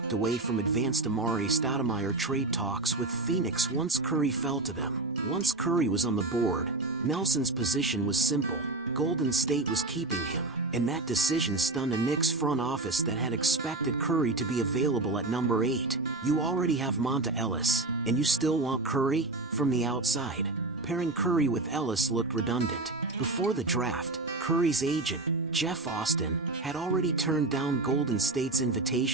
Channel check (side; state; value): left; quieter; 3.1 dB